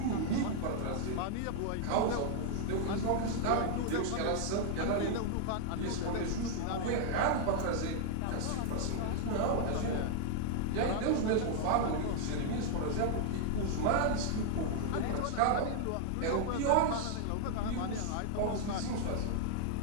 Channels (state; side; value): different; both; correlation 0.00